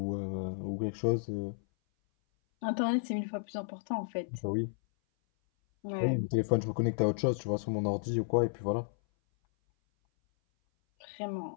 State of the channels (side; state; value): right; silent; 56 dB below the other